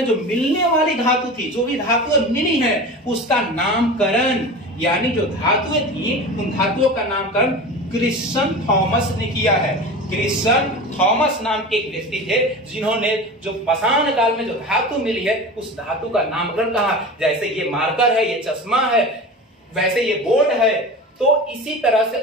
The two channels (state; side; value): normal; both; correlation 0.32